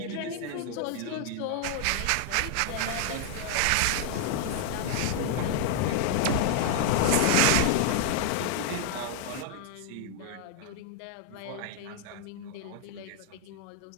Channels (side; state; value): both; different; correlation 0.00